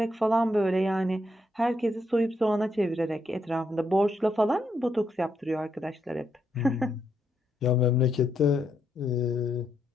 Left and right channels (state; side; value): normal; both; correlation 0.78